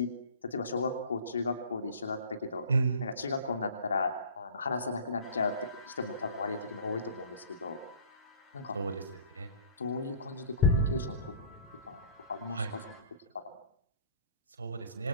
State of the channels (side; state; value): both; inverted; correlation -0.45